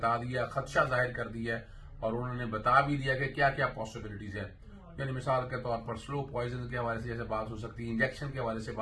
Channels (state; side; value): identical; both; correlation 1.00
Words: دیا، خدشہ ظاہر کر دیا اور انہوں نے بتا بھی دیا کہ کیا کیا پاسبلٹیز ہیں۔ یعنی مثال کے طور پر سلو پوائزن کے حوالے سے جیسے بات ہو سکتی ہے، انجیکشن کے حوالے سے